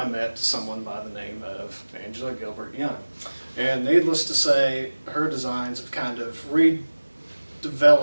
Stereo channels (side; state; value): both; inverted; correlation -1.00